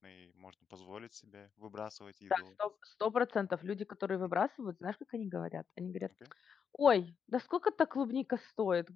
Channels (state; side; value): quieter; right; 6.9 dB